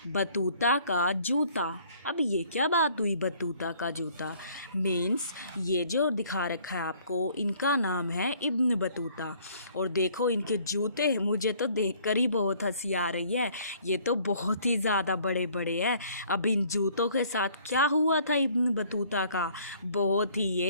बतूता का जूता। अब ये क्या बात हुई, बतूता का जूता मीन्स ये जो दिखा रखा है आपको, इनका नाम है इब्न बतूता। और देखो इनके जूते, मुझे तो देखकर ही बहुत हंसी आ रही है। ये तो बहुत ही ज़्यादा बड़े बड़े हैं। अब इन जूतों के साथ क्या हुआ था इब्न बतूता का, बहुत ही,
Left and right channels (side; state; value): both; inverted; correlation -0.58